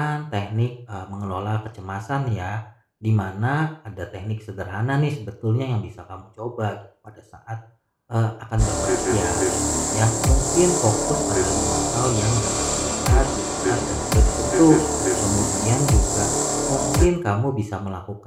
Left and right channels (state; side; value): identical; both; correlation 1.00